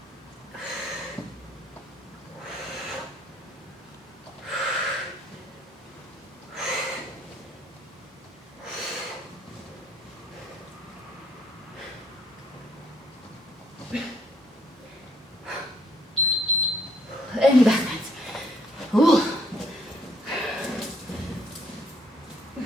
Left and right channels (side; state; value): both; normal; correlation 0.65